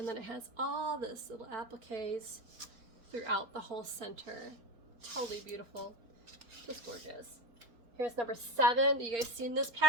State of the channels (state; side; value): late; left; 4.3 ms